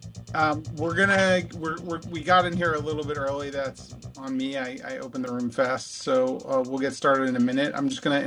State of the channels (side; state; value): both; identical; correlation 1.00